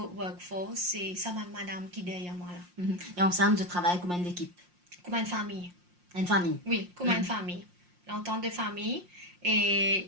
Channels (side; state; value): left; late; 5.6 ms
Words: workforce, c'est ça madame qui est derrière moi là. Et ensemble, je travaille comme une équipe. Comme une famille. Une famille. Oui, comme une famille. L'entente de famille